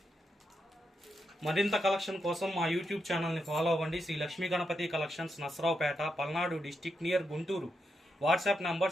మరింత కలెక్షన్ కోసం మా యూట్యూబ్ ఛానల్ని ఫాలో అవ్వండి. Sri Lakshmi Ganapathi collections, Narasaraopet, Palnadu district, near Guntur. WhatsApp number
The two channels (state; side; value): normal; both; correlation 0.84